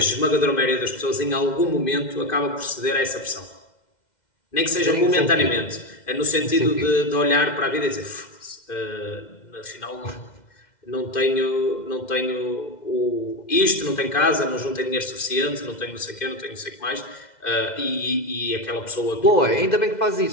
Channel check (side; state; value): right; late; 2.1 ms